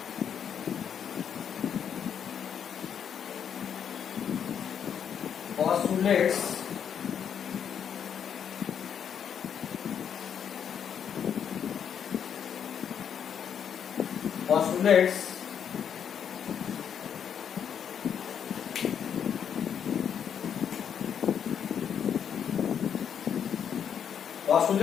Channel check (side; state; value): right; quieter; 8.1 dB